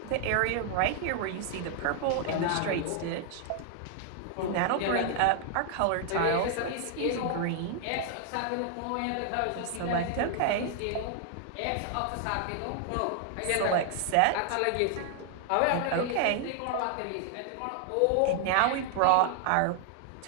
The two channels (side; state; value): both; different; correlation 0.00